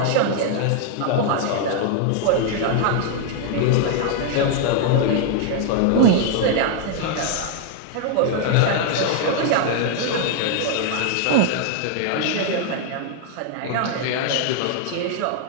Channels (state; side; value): different; both; correlation 0.00